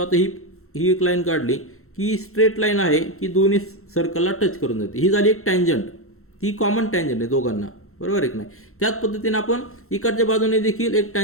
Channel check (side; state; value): right; late; 0.63 ms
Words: ही एक लाईन काढली की स्ट्रेट लाईन आहे की दोन्ही सर्कलला टच करून जाते, ही झाली एक टँजंट, ती कॉमन टँजंट आहे दोघांना, बरोबर आहे की नाही. त्याच पद्धतीने आपण इकडच्या बाजूने देखील एक